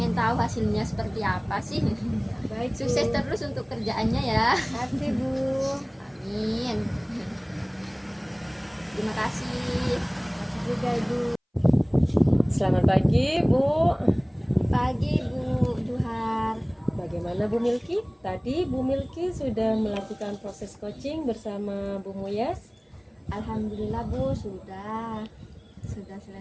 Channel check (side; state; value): both; identical; correlation 1.00